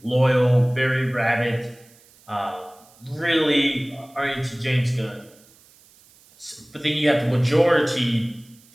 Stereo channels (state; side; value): noise; right; hiss, 28 dB below the sound